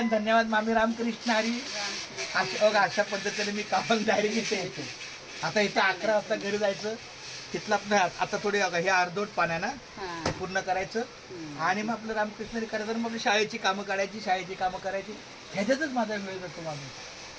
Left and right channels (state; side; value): identical; both; correlation 1.00